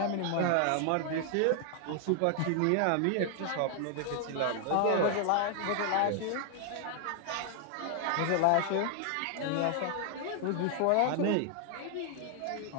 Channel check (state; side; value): different; both; correlation 0.00